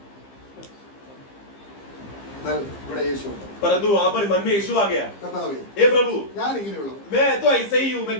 എന്നാൽ ഇവിടെ യേശു ഉണ്ട്. परंतु वहां पर मन में यीशु आ गया, കർത്താവേ, हे प्रभु ഞാൻ ഇങ്ങനെയുള്ളവൻ, मैं तो ऐसे ही हूँ, मैं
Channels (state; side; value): late; right; 15 ms